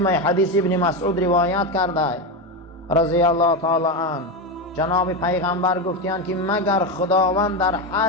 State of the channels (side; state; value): both; normal; correlation 0.13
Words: حدیث ابن مسعود روایت کرده رضی الله تعالی عنه، جناب پیغمبر گفتیان که مگر خداوند در